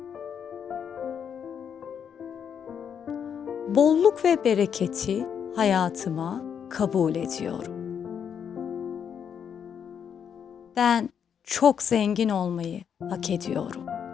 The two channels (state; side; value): quieter; right; 7.8 dB